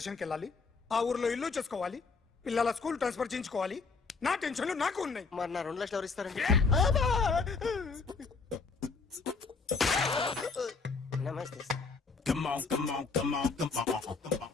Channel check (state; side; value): quieter; right; 4.6 dB